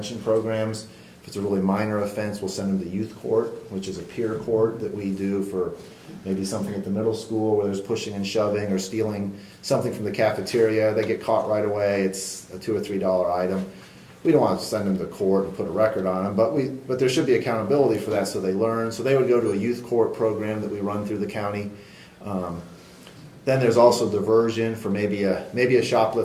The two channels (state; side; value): identical; both; correlation 1.00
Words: programs. If it's a really minor offense, we'll send them to youth court, which is a peer court that we do for maybe something at the middle school where there's pushing and shoving or stealing something from the cafeteria. They get caught right away. It's a $2 or $3 item. We don't want to send them to court and put a record on them, but there should be accountability for that so they learn. So they would go to a youth court program that we run through the county. Then there's also diversion for maybe a